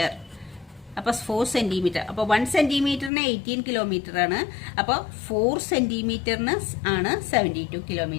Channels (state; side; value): drops out; right; at 3.1 s